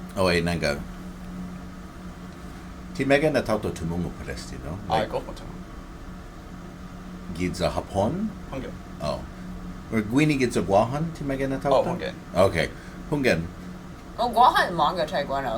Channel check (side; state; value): both; identical; correlation 1.00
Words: Oh, wait, nanga. Ti mega na tauto tumungo paresti, no? Like, Gulf Moto. Gidza Hapon? Hungen. Oh. Or Gwini gidza Guahan? Ti mega na tauto? Oh, Hungen. Okay. Hungen. Oh, Guahan manga try Guano,